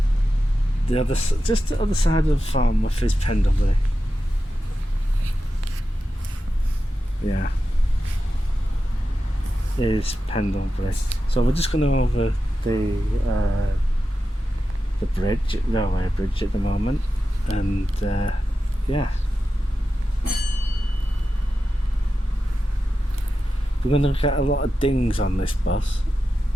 the other side of Farnworth is Pendlebury. Yeah, is Pendlebury. So we're just going over the railway bridge at the moment, and yeah, we're going to get a lot of dings on this bus,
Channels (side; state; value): both; normal; correlation 0.91